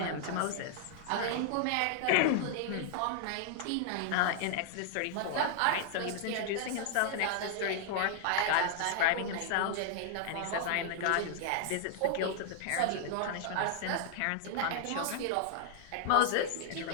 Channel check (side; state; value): both; different; correlation -0.01